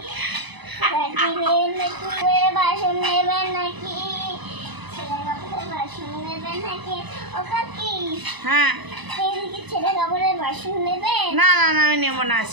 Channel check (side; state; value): left; late; 1.0 ms